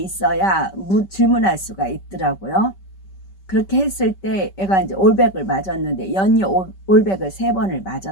질문할 수가 있더라고요. 그렇게 했을 때 애가 이제 올백을 맞았는데 연이 올백을 3번을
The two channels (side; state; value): right; late; 5.2 ms